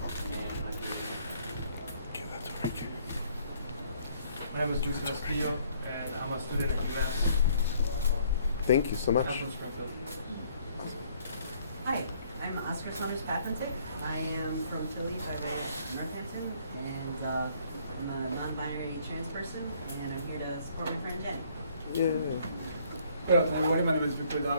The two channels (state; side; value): inverted; both; correlation -0.63